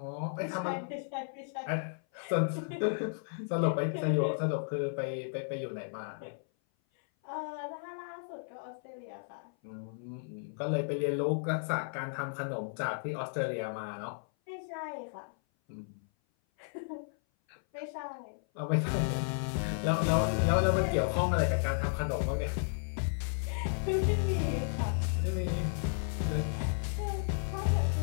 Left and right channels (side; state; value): right; silent; 55 dB below the other